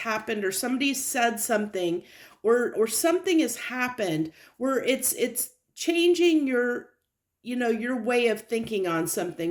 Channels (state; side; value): identical; both; correlation 1.00